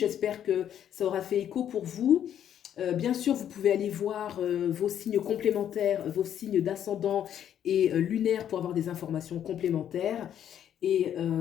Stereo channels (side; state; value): right; quieter; 9.9 dB